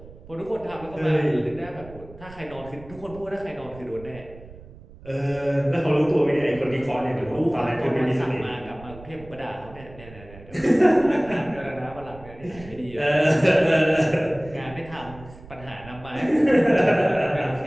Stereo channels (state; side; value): noise; right; rumble, 19 dB below the sound